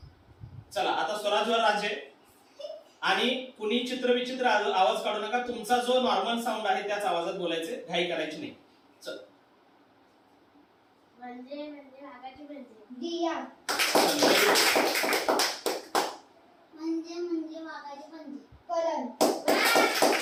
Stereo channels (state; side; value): identical; both; correlation 1.00